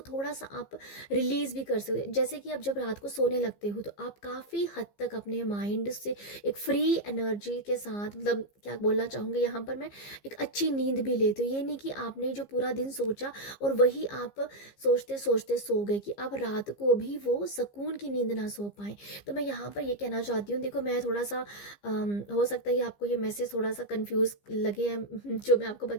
थोड़ा सा आप रिलीज़ भी कर सकते हो। जैसे कि आप जब रात को सोने लगते हो तो आप काफ़ी हद तक अपने माइंड से एक फ्री एनर्जी के साथ, मतलब क्या बोलना चाहूँगी यहाँ पर मैं, एक अच्छी नींद भी लेते हो। ये नहीं कि आपने जो पूरा दिन सोचा और वही आप सोचते सोचते सो गए, कि आप रात को भी वो सुकून की नींद ना सो पाएँ। तो मैं यहाँ पर ये कहना चाहती हूँ, देखो मैं थोड़ा सा हो सकता है आपको ये मैसेज थोड़ा सा कंफ्यूज लगे हैं जो मैं आपको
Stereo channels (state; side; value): late; right; 15 ms